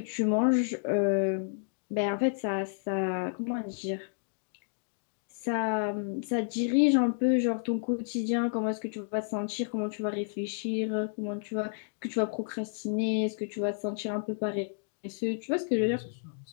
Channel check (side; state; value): right; silent; digital silence